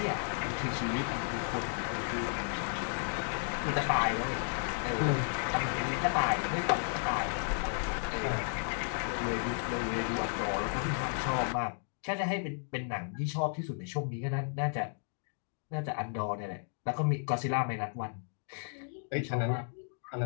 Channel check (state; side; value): silent; right; 55 dB below the other